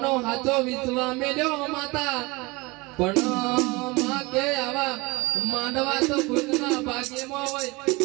હાથો વિશ્વા મેલ્યો માતા પણ માં કે આવા માંડવા તો ખુદના ભાગ્યમાં હોય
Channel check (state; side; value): quieter; left; 24.3 dB